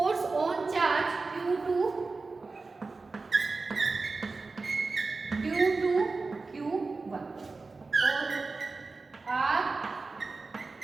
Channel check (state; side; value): quieter; left; 3.9 dB